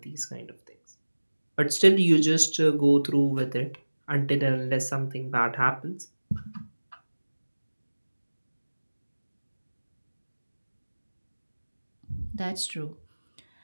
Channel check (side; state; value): both; inverted; correlation -1.00